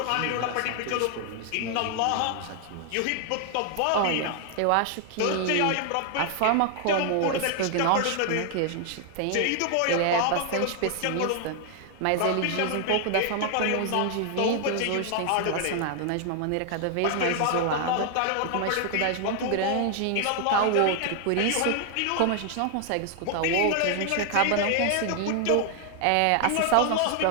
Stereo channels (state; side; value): different; both; correlation 0.00